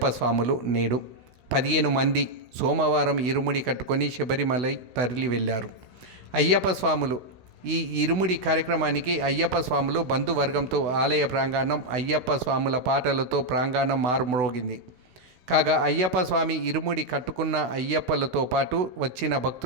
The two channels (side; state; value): left; late; 16 ms